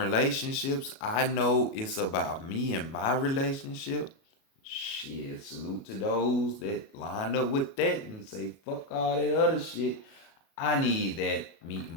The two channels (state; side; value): late; right; 37 ms